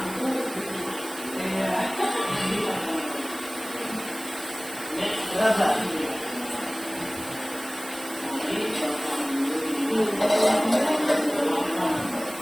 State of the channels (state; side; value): noise; right; hiss, 13 dB below the sound